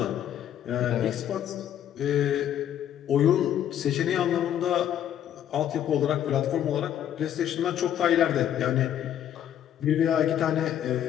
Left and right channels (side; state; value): right; quieter; 10.4 dB